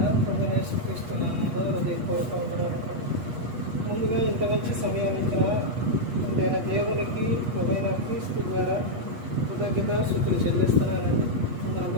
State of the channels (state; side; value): late; left; 8.3 ms